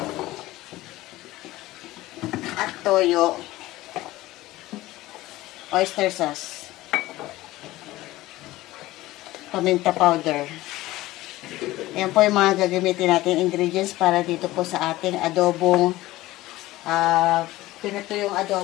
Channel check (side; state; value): right; quieter; 17.5 dB